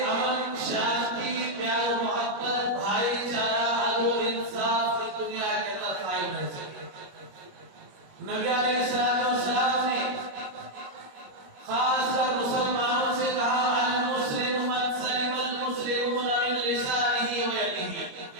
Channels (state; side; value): late; left; 21 ms